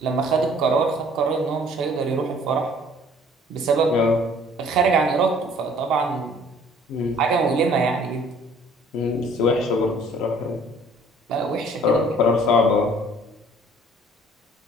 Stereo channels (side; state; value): both; normal; correlation 0.55